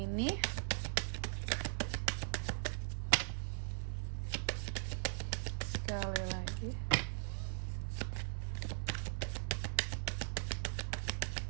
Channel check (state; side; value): silent; left; digital silence